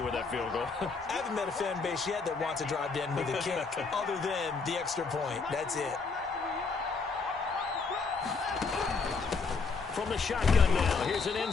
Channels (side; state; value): right; quieter; 4.6 dB